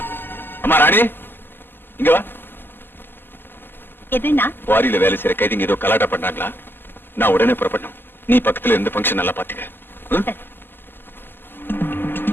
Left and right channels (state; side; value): late; right; 0.10 ms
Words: அம்மா ராணி, இங்க வா. எதுனா வாரியில வேலை செய்யற கைதிங்க ஏதோ கலாட்டா பண்ணாங்களா? நான் உடனே புறப்படணும். நீ பக்கத்துல இருந்து ஃபங்க்ஷன் நல்லா பாத்துக்க.